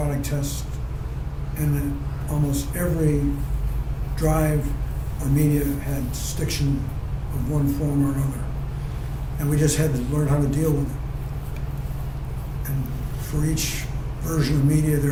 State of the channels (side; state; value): both; identical; correlation 1.00